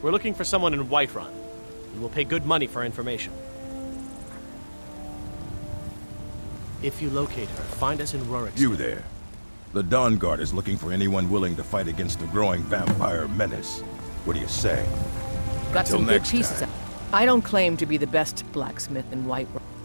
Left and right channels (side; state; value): both; inverted; correlation -1.00